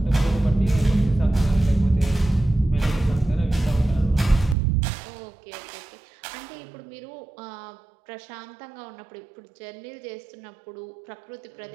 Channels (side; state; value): left; drops out; at 4.5 s